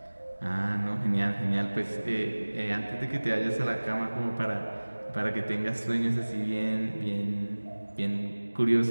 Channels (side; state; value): both; inverted; correlation -1.00